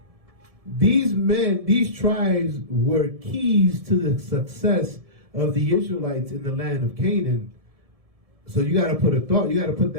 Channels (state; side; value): late; left; 1.7 ms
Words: these men, these tribes were keys to the success of the Israelites in the land of Canaan. So you got to put